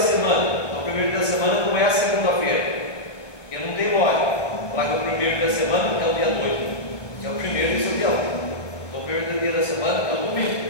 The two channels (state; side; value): late; right; 1.2 ms